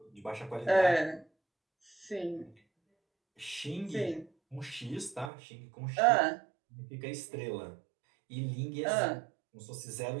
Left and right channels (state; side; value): drops out; left; at 5.3 s